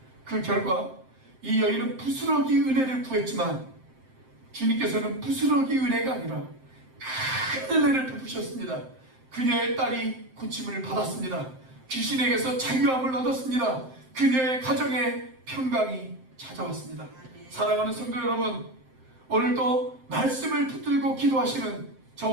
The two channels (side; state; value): left; late; 7.7 ms